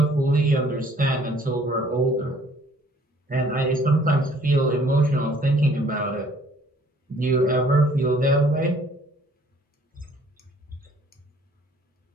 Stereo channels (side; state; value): both; normal; correlation 0.59